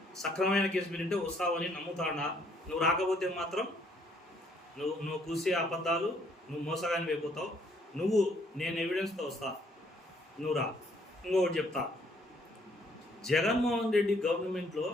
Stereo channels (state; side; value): normal; both; correlation 0.66